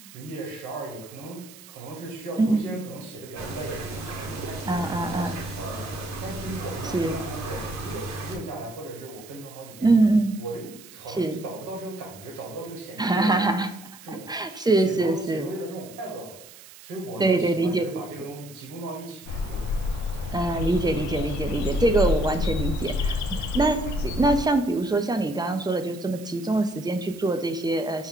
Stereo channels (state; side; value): noise; right; hiss, 19 dB below the sound